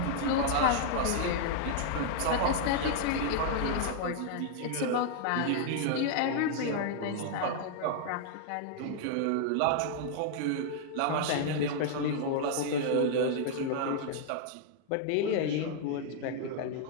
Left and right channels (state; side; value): different; both; correlation -0.01